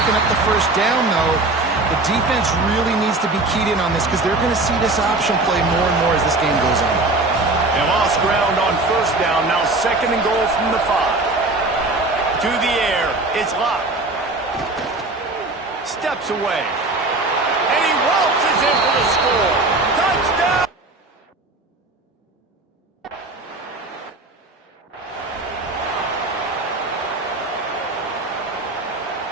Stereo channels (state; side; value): quieter; left; 3.1 dB